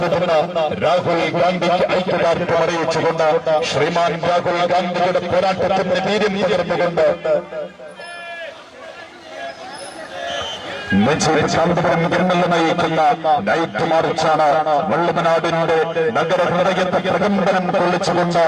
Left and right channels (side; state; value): both; identical; correlation 1.00